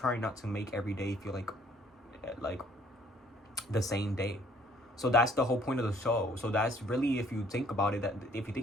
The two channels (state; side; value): normal; both; correlation 0.61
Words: not to make every day feel like the same day. So that's the whole point of the show. So that's really, if you think about it,